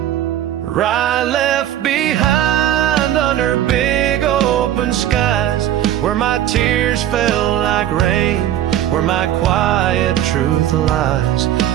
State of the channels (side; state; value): left; quieter; 11.8 dB